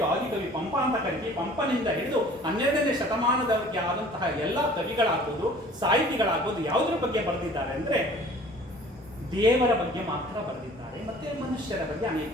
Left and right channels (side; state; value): both; normal; correlation 0.49